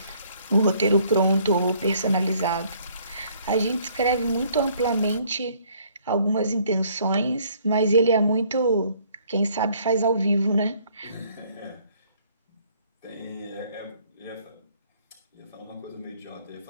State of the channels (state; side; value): inverted; both; correlation -0.61